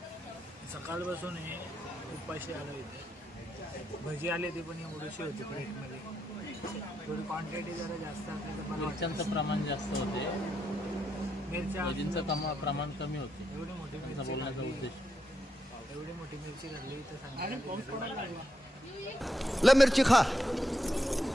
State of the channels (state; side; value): normal; both; correlation 0.82